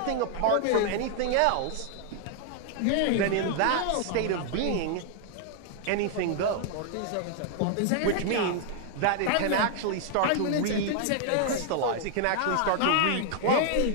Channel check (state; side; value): different; both; correlation 0.00